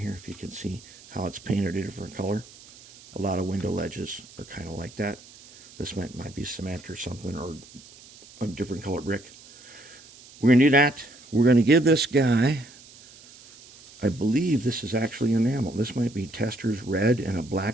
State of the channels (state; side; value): noise; right; hiss, 22 dB below the sound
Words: if you can see how it's painted a different color. A lot of window ledges are kind of like that. This might be cement or something, or a different color brick. We're going to do that. We're going to give this guy, I believe this is actually enamel. This might be Tester's red and a